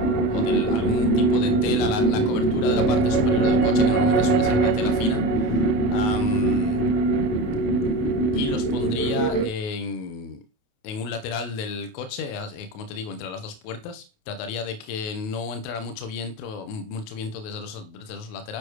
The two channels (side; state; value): right; late; 28 ms